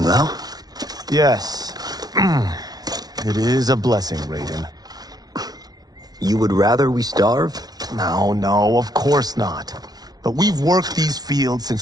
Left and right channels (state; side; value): late; left; 0.19 ms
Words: Lao. Yes. It is a blessing, Raiden. You would rather we starve? No, of course not. But we've worked these fields